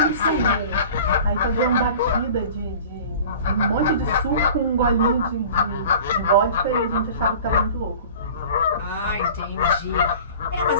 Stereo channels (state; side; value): inverted; both; correlation -0.42